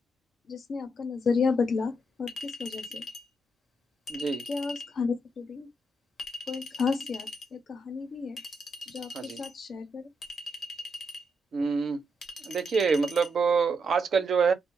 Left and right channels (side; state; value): both; normal; correlation 0.80